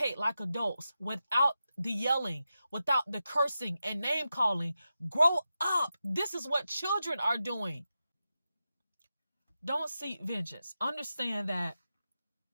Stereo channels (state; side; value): inverted; both; correlation -0.90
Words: like adults without the yelling, without the cursing and name calling. Grow up. This is what children are doing. Don't seek vengeance. Understand that